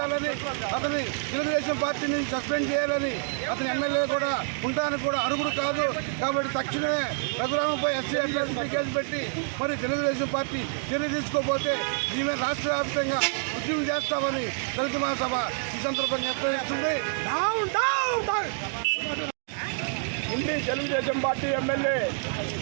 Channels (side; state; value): left; silent; 57 dB below the other